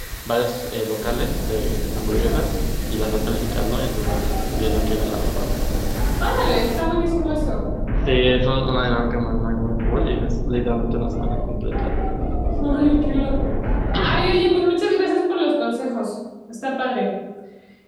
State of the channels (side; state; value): both; identical; correlation 1.00